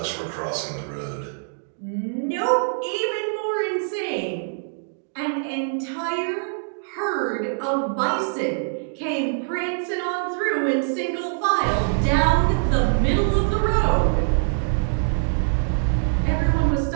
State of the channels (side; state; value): left; silent; digital silence